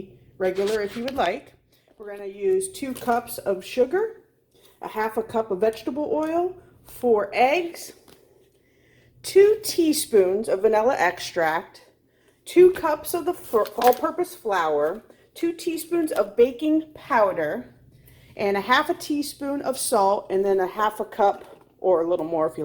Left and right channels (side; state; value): both; identical; correlation 1.00